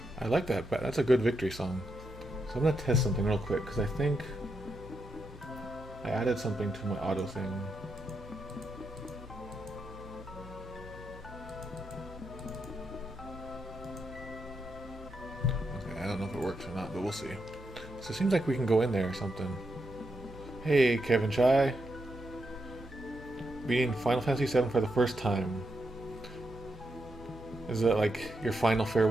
I like that, but that's a good victory song. So I'm gonna test something real quick, because I think I added something to my auto thing. Okay, I don't know if it works or not, but we'll see. So it seems like we can go in there or something. Hey, Kevin Chai. Beating Final Fantasy VII for the first time. Is that like your final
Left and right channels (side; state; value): both; normal; correlation 0.83